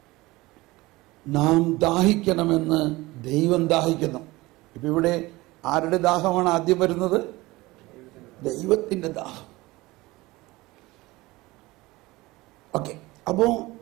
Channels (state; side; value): quieter; left; 20.6 dB